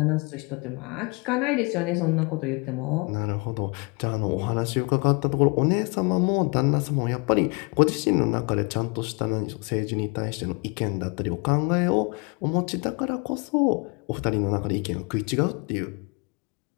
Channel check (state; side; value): quieter; right; 31.4 dB